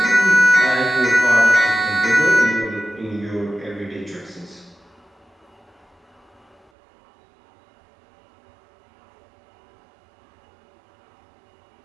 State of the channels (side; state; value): left; drops out; at 6.7 s